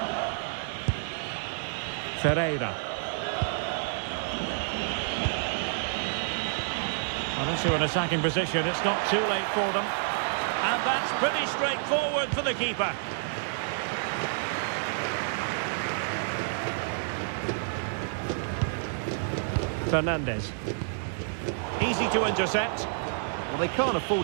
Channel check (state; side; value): silent; left; digital silence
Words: Ferreira. Well, into an attacking position. It's not too late for them. And that's pretty straightforward for the keeper. Fernandez. Easy to intercept. Well, they can't